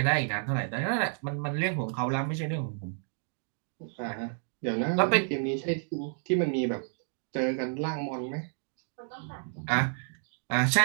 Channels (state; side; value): silent; left; 57 dB below the other